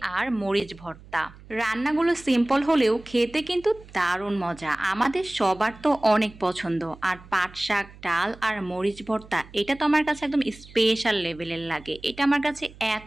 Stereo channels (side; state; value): right; noise; hum, 21 dB below the sound